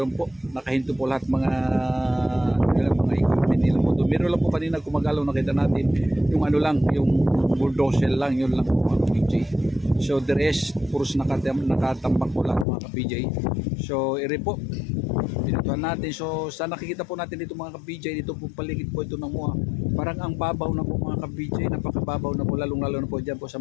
po, nakahinto po lahat mga equipment nila po doon. Meron lang po kanina gumagalaw, nakita natin yung ano lang, yung bulldozer lang, yun lang po mga ka-PJ. So the rest, puros nakatambak po lahat mga ka-PJ. So ere po, pinutuhan natin. So sa nakikita po natin dito mga ka-PJ, dito po paligid po ito ng MOA, parang ang babaw na po mga ka-PJ, napakababaw na po, lalong-lalo na po dyan po sa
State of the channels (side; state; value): right; drops out; at 12.7 s